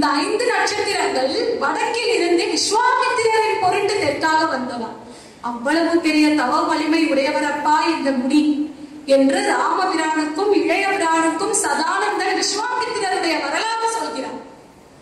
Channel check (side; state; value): both; identical; correlation 1.00